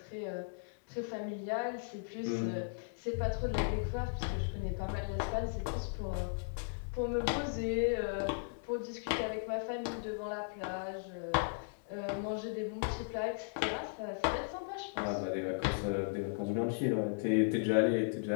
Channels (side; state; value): right; silent; digital silence